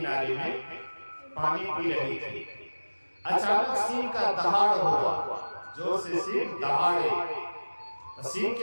में पानी पी रही थी। अचानक सिंह का दहाड़ हुआ, जोर से सिंह दहाड़े। सिंह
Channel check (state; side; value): inverted; both; correlation -1.00